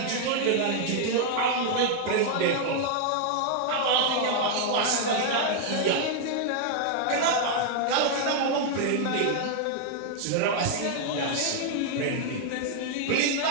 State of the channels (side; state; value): both; different; correlation 0.00